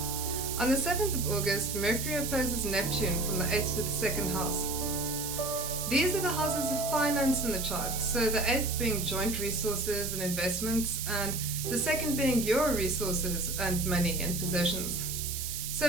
On the 7th of August, Mercury opposes Neptune from the 8th to the 2nd house. These are the houses of finance in the chart, so the 8th being joint resources and investments, and the 2nd being your resources and money and possessions.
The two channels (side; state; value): right; noise; hiss, 4 dB below the sound